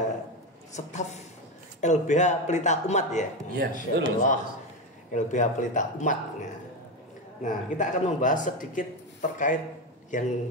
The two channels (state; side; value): normal; both; correlation 0.14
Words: staf LBH Pelita Umat ya. Iya, betul. LBH Pelita Umat. Nah, kita akan membahas sedikit terkait